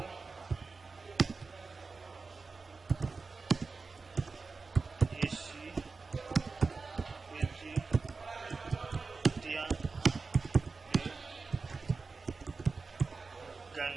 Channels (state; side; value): quieter; left; 4.3 dB